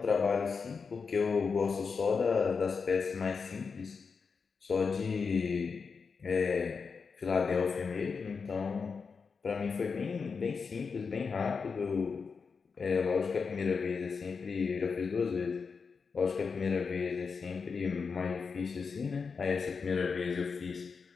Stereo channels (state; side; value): quieter; right; 5.3 dB